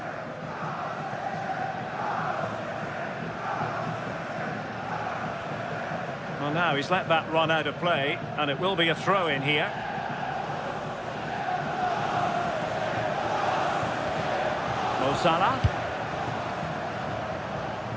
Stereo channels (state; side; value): identical; both; correlation 1.00